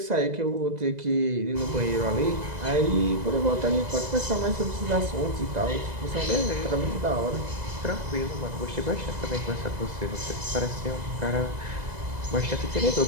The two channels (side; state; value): left; late; 2.0 ms